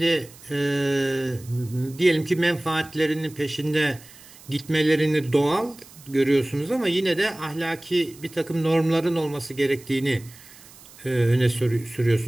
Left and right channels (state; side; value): noise; right; hiss, 22 dB below the sound